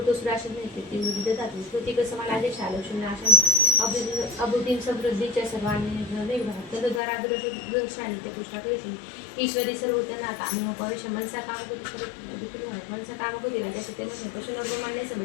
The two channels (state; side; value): drops out; right; at 7.0 s